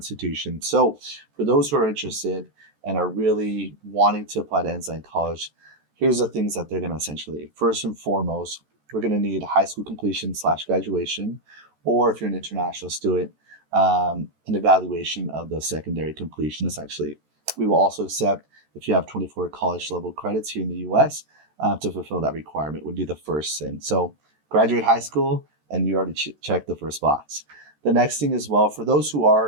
So for those who are interested and are really wanting to apply to Ensign College, here's the things that they're going to essentially need. First and foremost, we're going to need high school completion / graduation, or if you're an international student, an evaluation of the secondary completion, essentially. We will also accept if you have 24 college level credits here in the US to fulfill that requirement would be the first thing. So graduate high school, and you already checked the first box. The next thing as well, for those who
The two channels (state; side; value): late; left; 14 ms